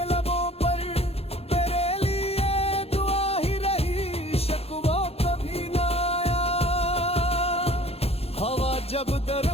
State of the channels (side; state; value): right; late; 0.29 ms